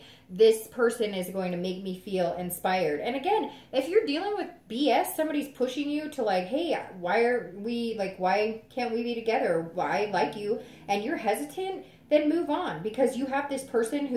This person is going to make me feel inspired. And again, if you're dealing with BS, somebody's pushing you to like, hey, why can't we be together? I like you, and you're hesitant, then move on, because you have this person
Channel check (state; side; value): identical; both; correlation 1.00